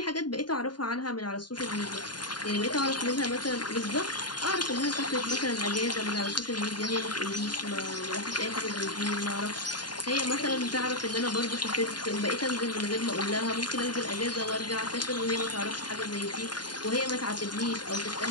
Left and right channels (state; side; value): late; right; 0.70 ms